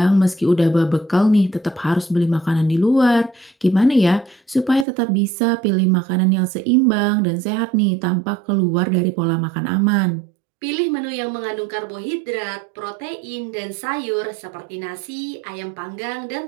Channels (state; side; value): drops out; left; at 4.9 s